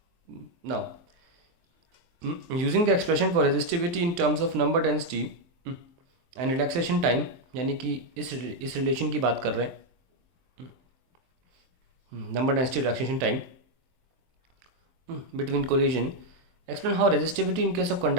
Now, using the expression for resistivity in terms of number density and relaxation time, यानी कि इस relation की बात कर रहे हैं, number density relaxation time between collision, explain how resistivity in case of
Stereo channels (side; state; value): left; late; 23 ms